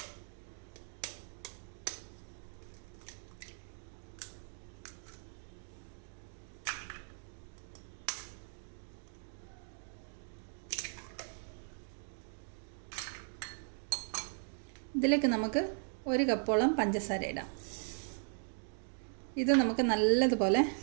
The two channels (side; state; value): left; silent; 52 dB below the other